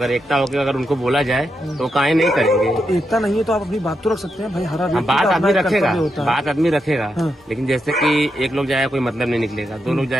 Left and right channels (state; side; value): normal; both; correlation 0.84